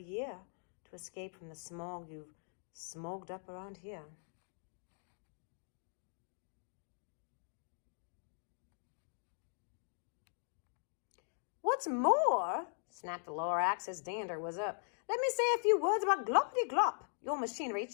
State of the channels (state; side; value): silent; right; digital silence